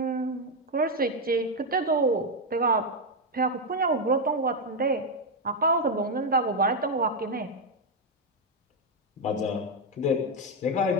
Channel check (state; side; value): normal; both; correlation 0.04